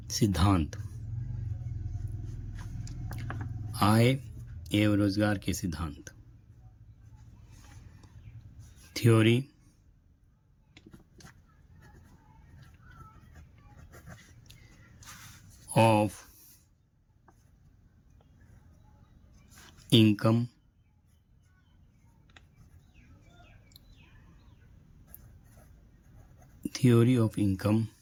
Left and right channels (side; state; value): both; identical; correlation 1.00